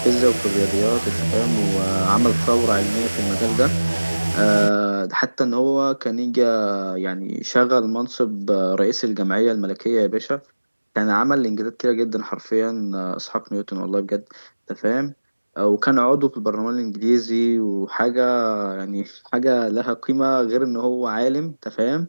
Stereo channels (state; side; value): inverted; both; correlation -1.00